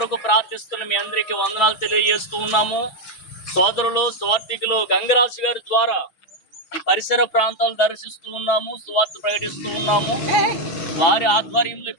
ప్రార్థిస్తున్న మీ అందరికీ వందనాలు తెలియజేస్తూ ఉన్నాము. సోదరులు సువార్థికులు గంగరాజు గారి ద్వారా ఈ పరిసర ప్రాంతాలు దర్శిస్తూ ఉన్నాము, సువార్త ప్రకటిస్తూ ఉన్నాము. వారి ఆధ్వర్యంలో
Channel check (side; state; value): right; late; 6.1 ms